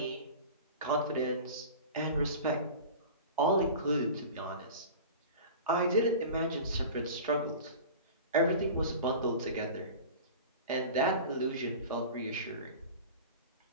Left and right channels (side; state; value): both; inverted; correlation -0.35